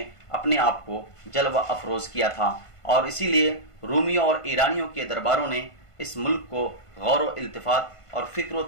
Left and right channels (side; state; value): right; late; 1.5 ms